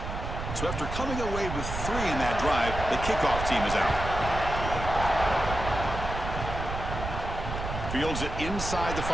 So after coming away with 3 in that drive, the kickoff team is out. Fields it inside the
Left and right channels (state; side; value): noise; right; rumble, 6 dB below the sound